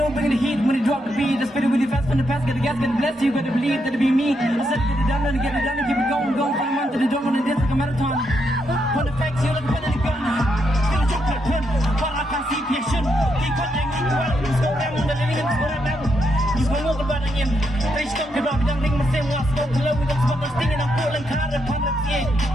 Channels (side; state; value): both; normal; correlation 0.80